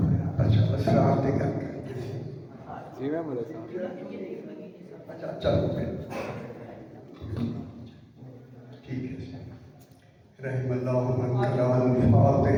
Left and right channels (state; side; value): identical; both; correlation 1.00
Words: जी मैं बोले अच्छा चलो ठीक है। रहमल्लाहु मन कलाल